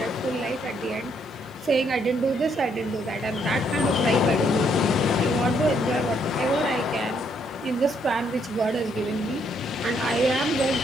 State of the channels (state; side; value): normal; both; correlation 0.71